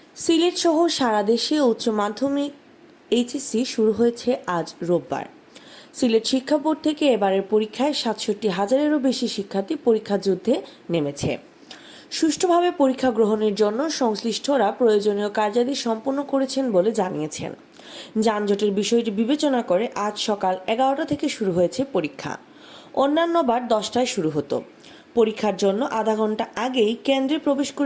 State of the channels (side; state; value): both; identical; correlation 1.00